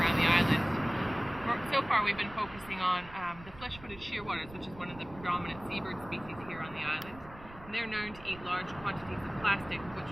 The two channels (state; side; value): noise; right; rumble, 18 dB below the sound